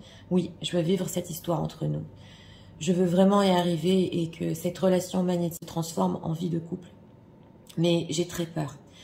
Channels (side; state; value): both; identical; correlation 1.00